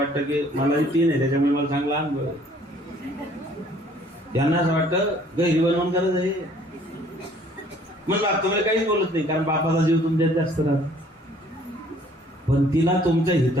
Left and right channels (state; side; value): normal; both; correlation 0.58